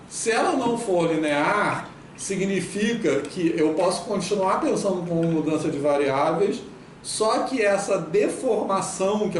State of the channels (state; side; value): identical; both; correlation 1.00